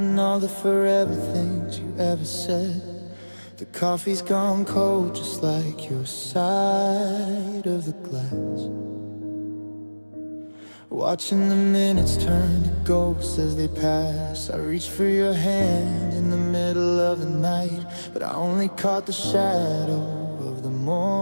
all the forever things you ever said. The coffee's gone cold, just like your side of the glass. Watching the minutes turn to ghosts as they pass. I reached for your hand in the middle of the night, but I only caught the shadow of the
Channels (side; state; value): both; inverted; correlation -1.00